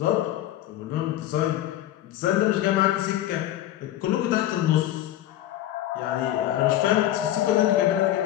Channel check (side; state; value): right; quieter; 13.3 dB